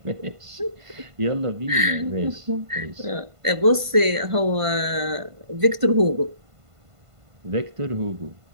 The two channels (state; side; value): late; left; 1.5 ms